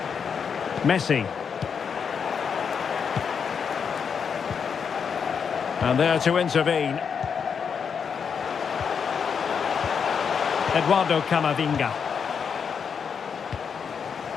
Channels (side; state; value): right; quieter; 6.6 dB